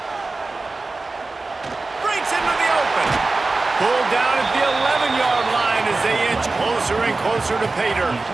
Breaks into the open. Pulled down at the 11-yard line as they inch closer and closer to pay dirt.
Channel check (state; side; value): quieter; left; 3.5 dB